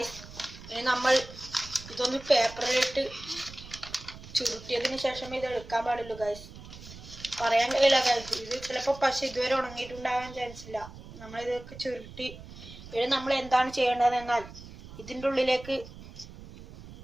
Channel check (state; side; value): noise; right; rumble, 16 dB below the sound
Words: ഇനി നമ്മൾ ഇതൊന്ന് പേപ്പറിലിട്ട് ചുരുട്ടിയതിന് ശേഷം ഇത് എടുക്കാൻ പാടുള്ളൂ ഗായ്സ്. പറയാൻ കഴിയില്ല ഗായ്സ്. ഇത് ചിലപ്പോൾ പശ ഇതുവരെ ഉണങ്ങിയിട്ടുണ്ടാകാൻ ചാൻസ് ഇല്ല. നമ്മളിതൊക്കെ ചുരുട്ടി ഇനി നമ്മൾ എന്താണ് ചെയ്യേണ്ടതെന്നാൽ ഇതിൻ്റെ ഉള്ളിലേക്ക്